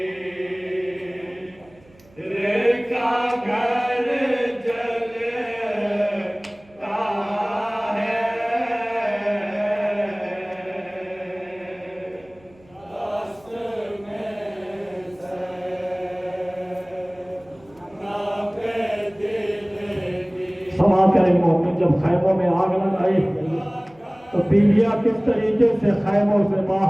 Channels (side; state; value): right; noise; hum, 28 dB below the sound